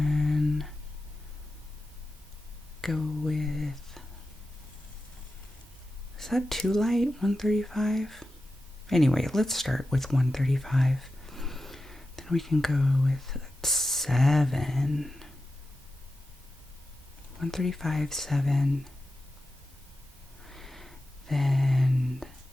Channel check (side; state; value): both; normal; correlation 0.91